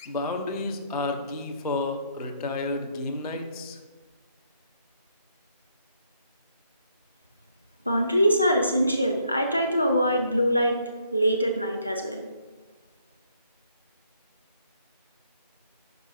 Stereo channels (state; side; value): inverted; both; correlation -0.70